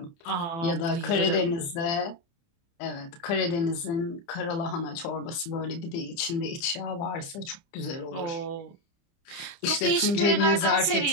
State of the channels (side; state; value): right; late; 30 ms